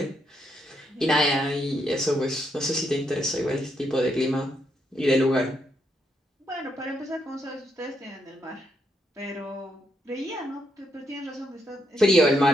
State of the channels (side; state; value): both; normal; correlation 0.78